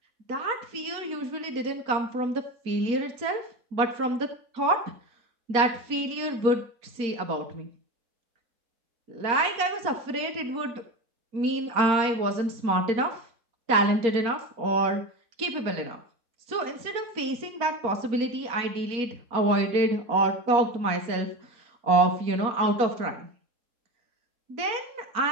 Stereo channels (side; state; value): left; late; 4.3 ms